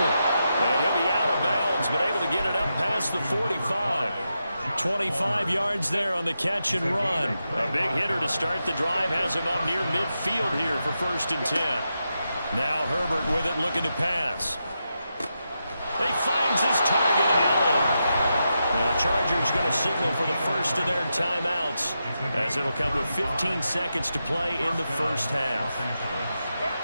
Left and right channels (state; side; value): inverted; both; correlation -0.87